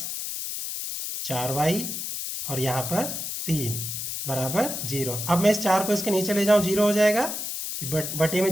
4y और यहाँ पर 3 बराबर 0। अब मैं इस 4 को इसके नीचे ले जाऊं, 0 हो जाएगा कि बटे में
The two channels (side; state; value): left; noise; hiss, 5 dB below the sound